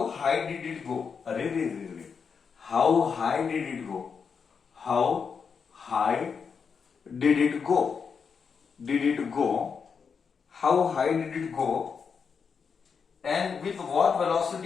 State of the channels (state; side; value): quieter; right; 6.0 dB